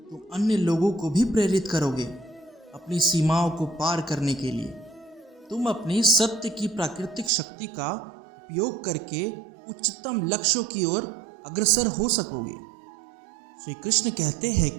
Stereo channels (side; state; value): left; drops out; at 7.3 s